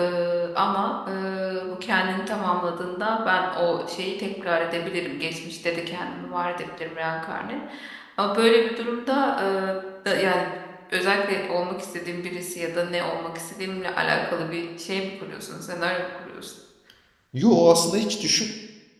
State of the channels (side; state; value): both; identical; correlation 1.00